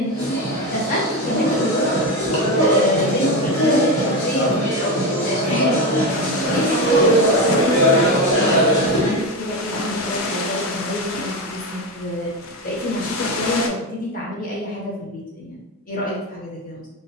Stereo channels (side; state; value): both; normal; correlation 0.16